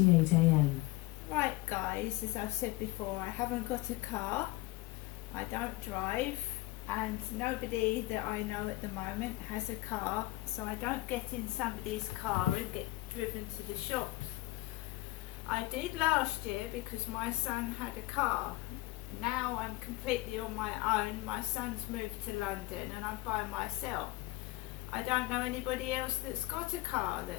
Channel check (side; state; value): right; quieter; 18.8 dB